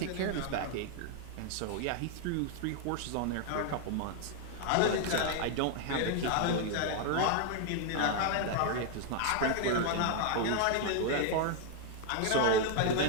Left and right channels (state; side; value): different; both; correlation 0.01